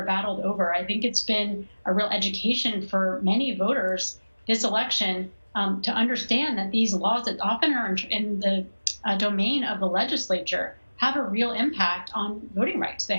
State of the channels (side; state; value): both; inverted; correlation -1.00